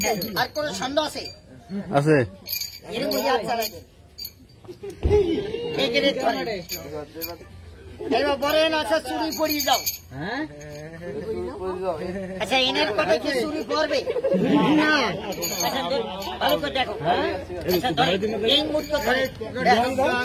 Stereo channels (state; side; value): identical; both; correlation 1.00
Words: আর কোন সন্দেহ আছে? আছে। এরকম ইয়াদ চালাই দেন, এবার বলেন আচ্ছা চুরি পড়িয়ে যাও। আচ্ছা এনের কথা কি চুরি করবে না? আচ্ছা ভালো করে দেখো, আচ্ছা এই মুহূর্ত ধরে